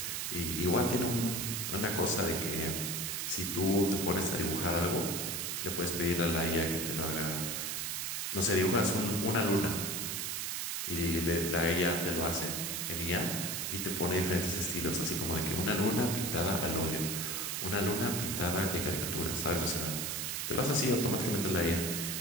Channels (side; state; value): right; noise; hiss, 2 dB below the sound